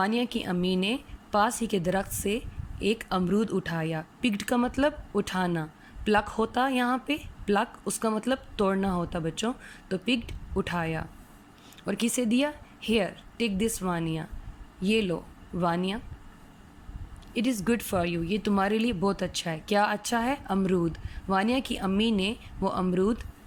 کی امی نے پاس ہی کے درخت سے ایک امرود اٹھایا. پکڈ کا مطلب اٹھانا. پلک ہوتا یہاں پہ، پلک اس کا مطلب توڑنا ہوتا بچوں. تو پکڈ اٹھایا اور کسے دیا؟ Here take this Vania. یہ لو Vania. It is good for you. یہ تمہارے لیے بہت اچھا ہے. کیا اچھا ہے؟ امرود. وانیہ کی امی نے وہ امرود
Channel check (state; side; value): identical; both; correlation 1.00